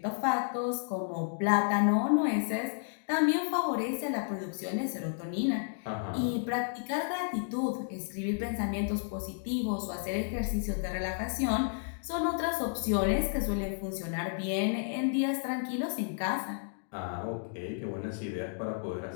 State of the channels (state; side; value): silent; right; digital silence